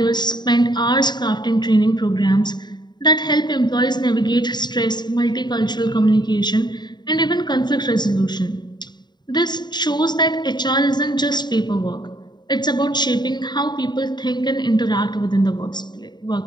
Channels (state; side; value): late; right; 0.21 ms